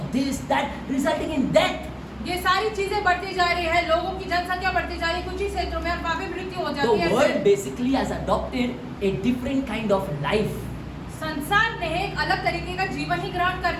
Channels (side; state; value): both; identical; correlation 1.00